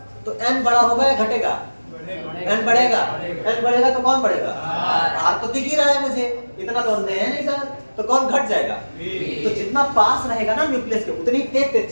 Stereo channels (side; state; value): both; inverted; correlation -1.00